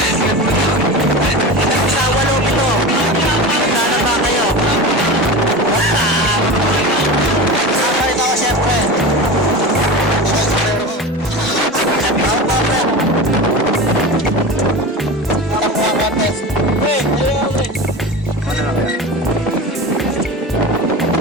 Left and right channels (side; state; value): both; normal; correlation 0.28